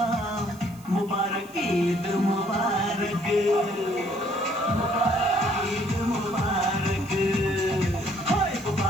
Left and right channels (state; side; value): noise; right; hiss, 24 dB below the sound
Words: मुबारक ईद मुबारक, मुबारक ईद मुबारक, हाय